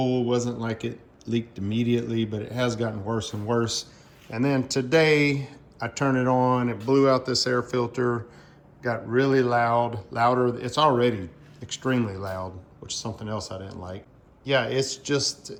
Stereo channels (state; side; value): identical; both; correlation 1.00